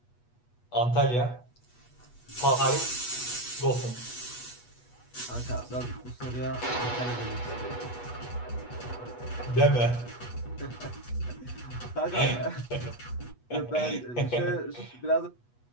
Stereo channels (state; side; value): late; right; 8.2 ms